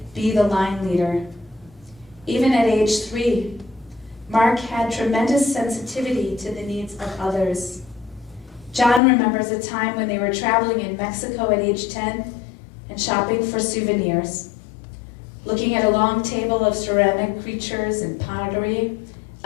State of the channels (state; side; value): drops out; right; at 9.0 s